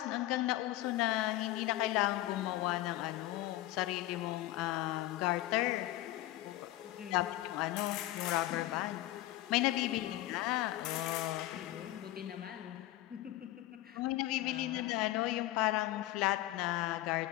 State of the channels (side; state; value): right; quieter; 16.0 dB